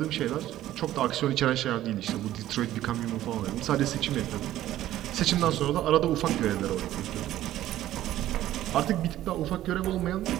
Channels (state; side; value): quieter; left; 13.6 dB